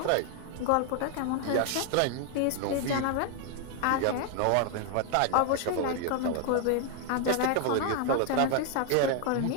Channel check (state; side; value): different; both; correlation 0.00